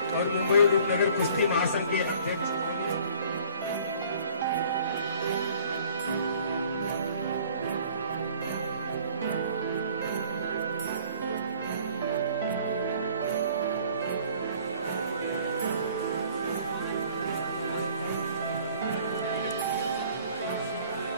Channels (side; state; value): both; inverted; correlation -0.54